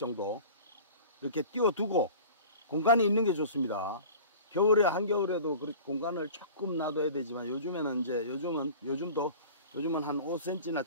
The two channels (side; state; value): both; inverted; correlation -0.41